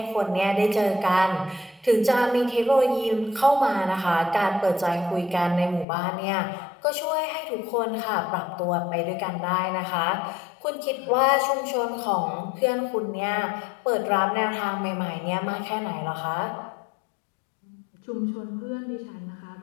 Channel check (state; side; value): drops out; right; at 5.9 s